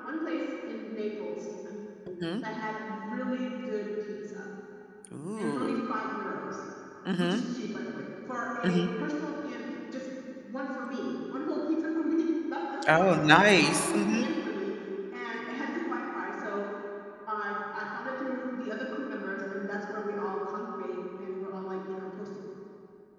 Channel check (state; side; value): identical; both; correlation 1.00